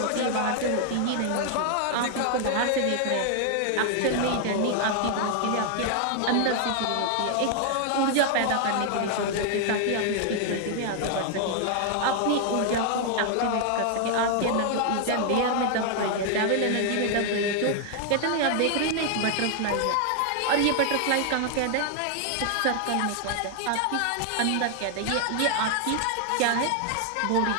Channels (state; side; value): different; both; correlation 0.00